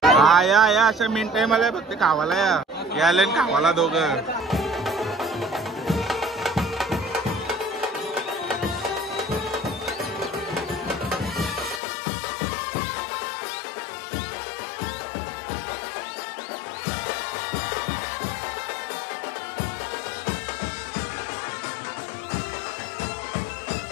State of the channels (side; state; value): right; drops out; at 11.8 s